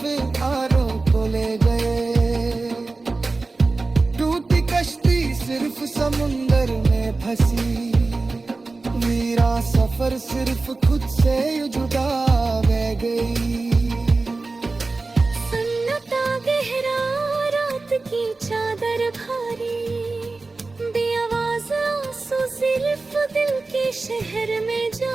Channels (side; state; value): left; quieter; 3.6 dB